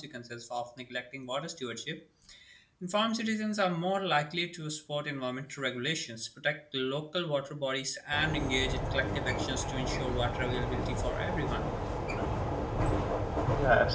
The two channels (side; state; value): both; identical; correlation 1.00